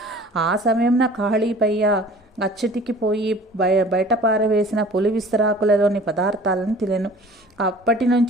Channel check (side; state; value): both; normal; correlation 0.46